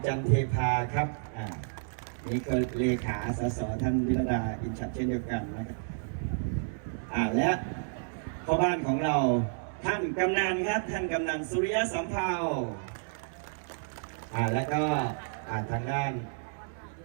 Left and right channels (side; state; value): left; silent; digital silence